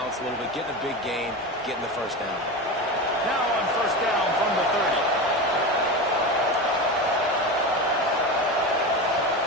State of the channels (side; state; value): both; normal; correlation 0.23